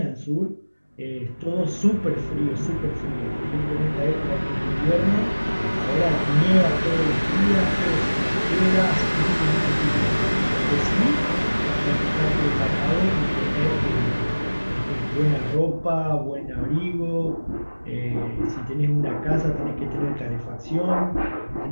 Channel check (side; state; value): both; inverted; correlation -1.00